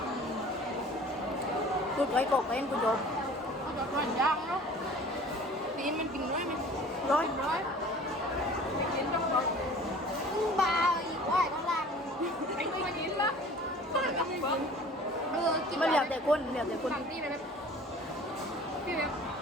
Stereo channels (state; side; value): normal; both; correlation 0.46